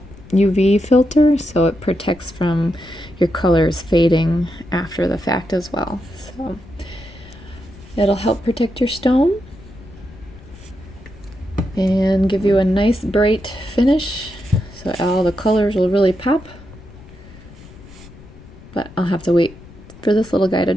UV filter, so it protects from your colors fading after the fact as well. So it'll help protect your stone and give you a nice bright finish, so all the colors will really pop. But I'll have to wait for this little guy to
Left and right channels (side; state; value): left; noise; rumble, 20 dB below the sound